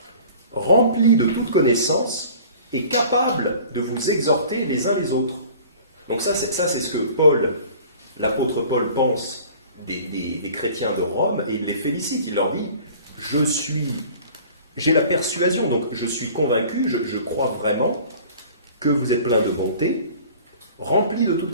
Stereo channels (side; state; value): both; inverted; correlation -0.46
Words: remplis de toute connaissance et capables de vous exhorter les uns les autres. Donc ça c'est ce que Paul l'apôtre Paul pense des chrétiens de Rome et il les félicite. Il leur dit, j'ai la persuasion, donc je suis convaincu, je crois vraiment que vous êtes plein de bonté, rempli de toute